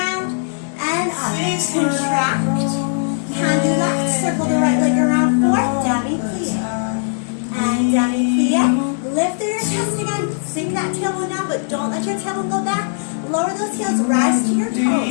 and up. Contract. Hand do left. Circle the right leg around. Fourth. Demi plie. And demi plie. Lift through your chest again. Sink that tailbone down, but don't let your tailbone go back. Lower those heels. Rise to your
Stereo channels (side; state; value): right; silent; digital silence